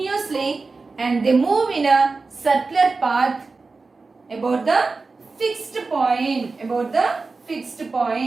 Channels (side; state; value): left; quieter; 4.0 dB